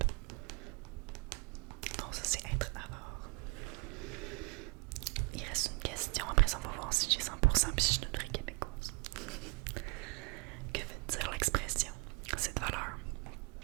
Donc, ça, c'est être avare. Il reste une question. Après ça, on va voir si j'ai 100% puis si je suis une vraie québécoise. Que veut dire l'expression? Cette valeur.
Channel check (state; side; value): quieter; left; 29.4 dB